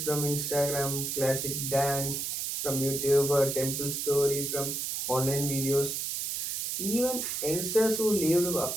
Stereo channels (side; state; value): right; noise; hiss, 2 dB below the sound